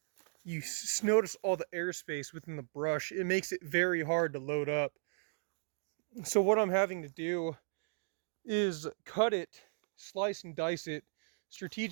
you notice all the airspace within the brush. It makes it very hard to load up. So what I'm having to do is cut it, slice and dice it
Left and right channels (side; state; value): left; silent; digital silence